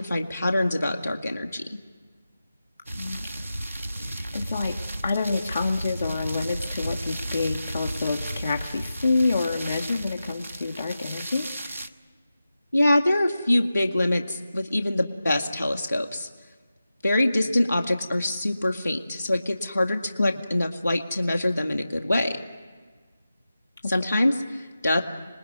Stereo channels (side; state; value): both; inverted; correlation -0.92